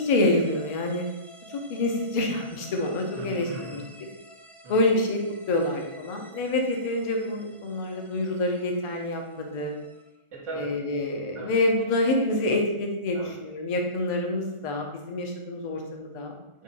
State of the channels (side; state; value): left; late; 1.4 ms